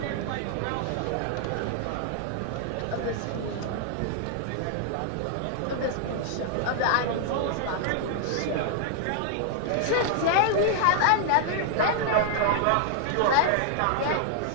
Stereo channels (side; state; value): both; different; correlation 0.00